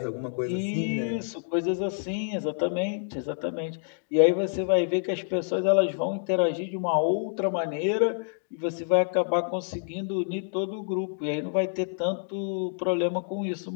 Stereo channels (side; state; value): right; silent; digital silence